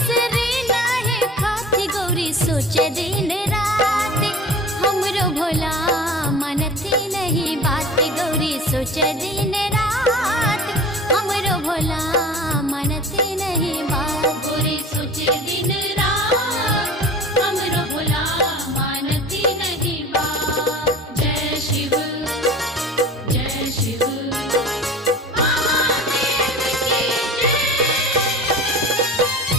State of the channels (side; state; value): both; normal; correlation 0.40